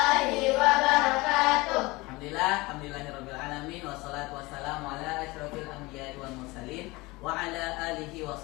wabarakatuh. Alhamdulillahirabbil alamin wassalatu wassalamu ala asyrofil anbiya'i wal mursalin wa ala alihi wa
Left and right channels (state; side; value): quieter; right; 22.5 dB